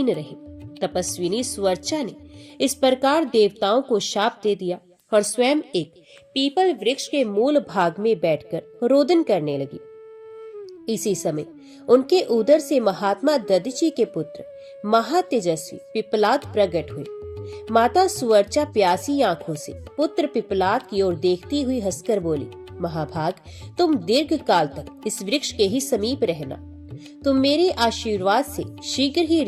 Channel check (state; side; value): identical; both; correlation 1.00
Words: रहे। तपस्विनी सुवर्चा ने इस प्रकार देवताओं को शाप दे दिया और स्वयं एक पीपल वृक्ष के मूल भाग में बैठकर रोदन करने लगी। इसी समय उनके उदर से महात्मा दधीचि के पुत्र महातेजस्वी पिप्पलाद प्रकट हुए। माता सुवर्चा प्यासी आंखों से पुत्र पिप्पलाद की ओर देखती हुई हंसकर बोली, महाभाग, तुम दीर्घ काल तक इस वृक्ष के ही समीप रहना। तुम मेरे आशीर्वाद से शीघ्र ही